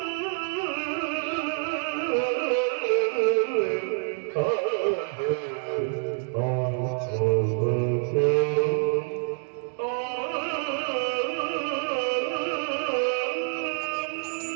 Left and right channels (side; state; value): left; silent; 60 dB below the other